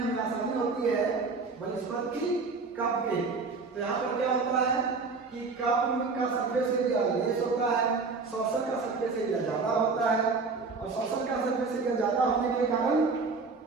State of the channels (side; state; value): left; quieter; 4.4 dB